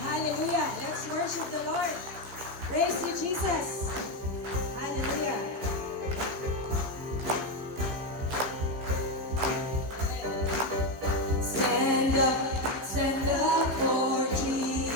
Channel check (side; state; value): left; late; 16 ms